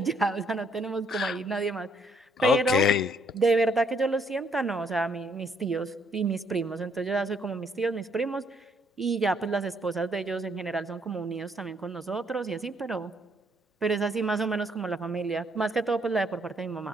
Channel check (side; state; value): both; normal; correlation 0.69